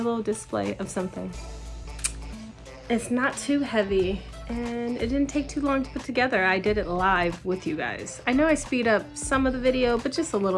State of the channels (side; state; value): both; identical; correlation 1.00